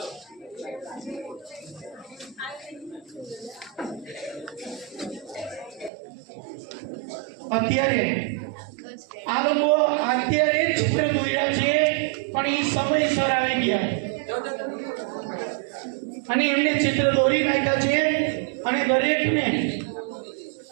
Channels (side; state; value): left; drops out; at 5.9 s